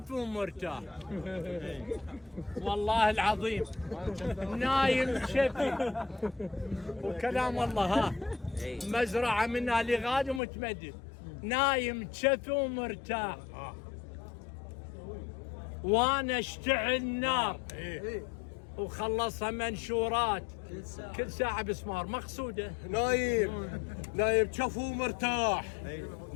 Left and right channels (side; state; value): right; drops out; at 10.4 s